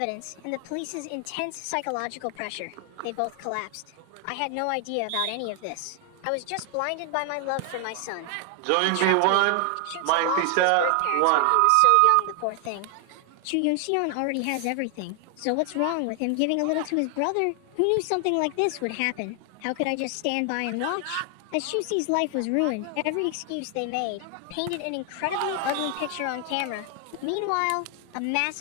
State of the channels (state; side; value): different; both; correlation 0.00